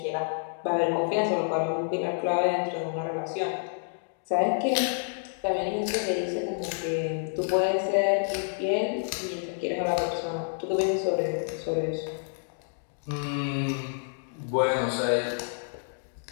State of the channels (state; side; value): silent; right; digital silence